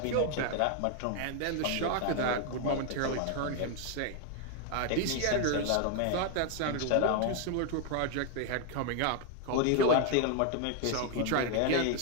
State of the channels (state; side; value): different; both; correlation 0.01